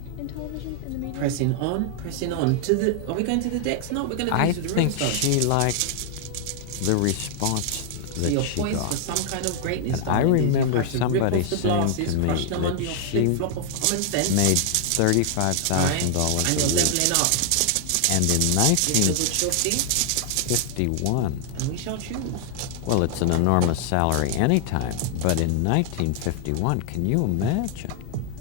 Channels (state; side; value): different; both; correlation 0.00